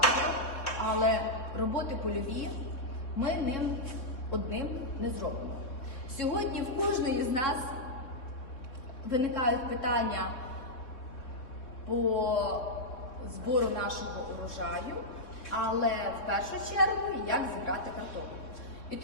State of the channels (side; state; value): right; late; 3.7 ms